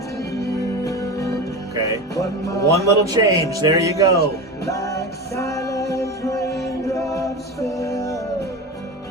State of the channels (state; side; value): normal; both; correlation 0.25